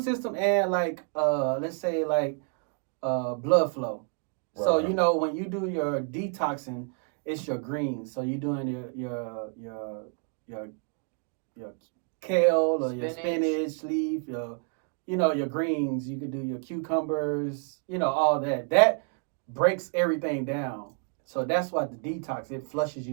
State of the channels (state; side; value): quieter; left; 37.7 dB